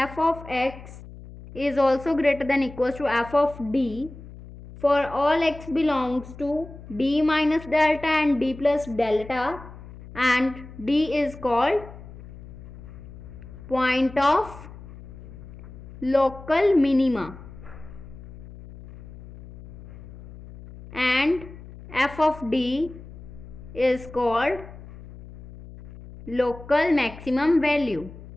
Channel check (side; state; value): left; noise; hum, 16 dB below the sound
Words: of x is also greater than equals to f of d for all x belongs to d minus delta and d plus delta, and d is called point of local minima, and f of d is called local maximum value,